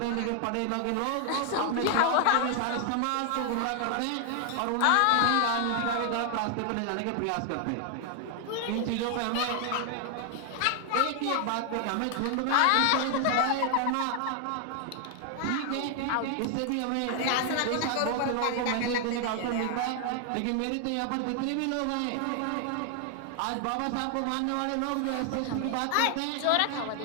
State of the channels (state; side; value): different; both; correlation 0.00